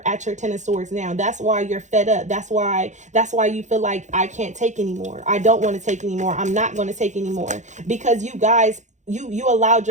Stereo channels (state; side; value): late; left; 0.35 ms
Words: at your Ten of Swords now. That's why you're fed up. That's why you feel like, I can't take anymore. I don't want to take anymore. I'm not going to take anymore. Because you guys, you allowed